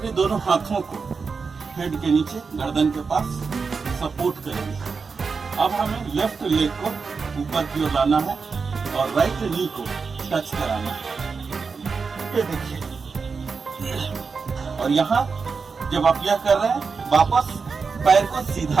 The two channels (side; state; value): left; quieter; 5.0 dB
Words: दोनों हाथों को हेड के नीचे गर्दन के पास सपोर्ट करेंगे। अब हमें लेफ्ट लेग को ऊपर की ओर लाना है और राइट नी को टच कराना है, ये देखिए। और यहाँ जब आप यह कर रहे हैं वापस पैर को